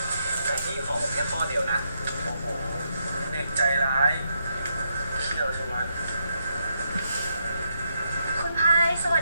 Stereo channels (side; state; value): both; inverted; correlation -0.80